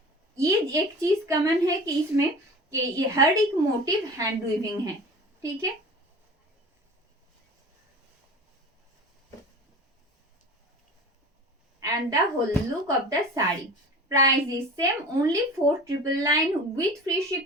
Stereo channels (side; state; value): both; normal; correlation 0.38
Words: ये एक चीज कॉमन है कि इसमें कि ये हर एक मोटिव हैंड वीविंग है. ठीक है. And the whole look of the sari. Price is same, only 4,999 with free